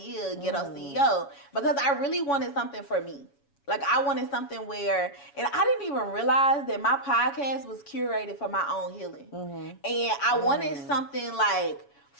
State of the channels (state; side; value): late; right; 7.1 ms